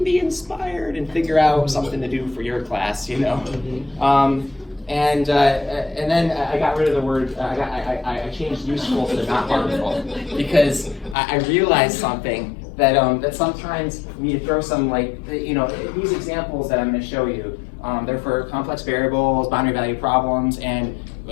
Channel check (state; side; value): drops out; right; at 11.2 s